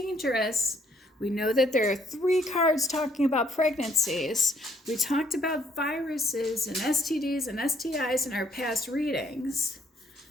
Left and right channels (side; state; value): both; normal; correlation 0.67